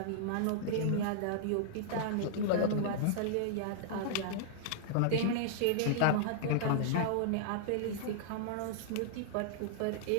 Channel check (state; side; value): different; both; correlation -0.01